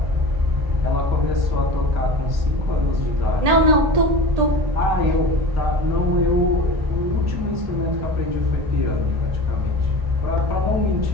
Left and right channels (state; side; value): late; left; 1.8 ms